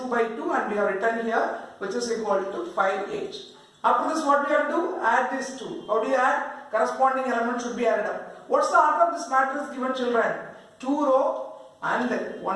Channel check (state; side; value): identical; both; correlation 1.00